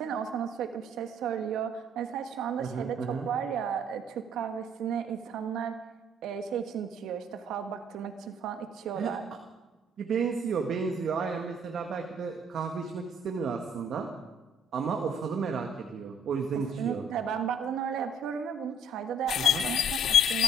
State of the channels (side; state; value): both; normal; correlation 0.60